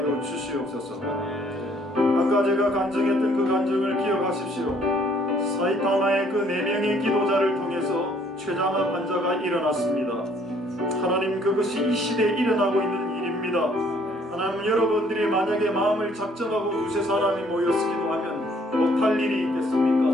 주시옵소서. 아까 제가 간증했던 그 간증을 기억하십시오. 사이타마의 그 4명의 기도자를 통해서 췌장암 환자가 일어났습니다. 하나님, 그것이 이 시대에 일어나고 있는 일입니다. 하나님, 여러분들이 만약에 마음을 작정하고 두세 사람이 모여서 기도하면 못할 일이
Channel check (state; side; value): normal; both; correlation 0.63